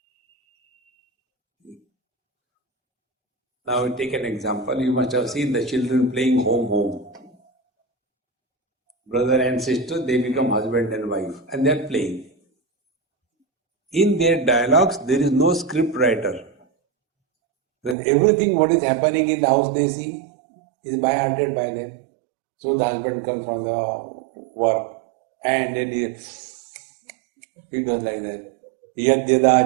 Now take an example. You must have seen the children playing home. Brother and sister, they become husband and wife and they are playing. In their dialogues, there is no script writer. Because everything what is happening in the house they see is by hearted by them. So the husband comes from the work and then he does like that. Yad yada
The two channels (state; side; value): drops out; left; at 17.9 s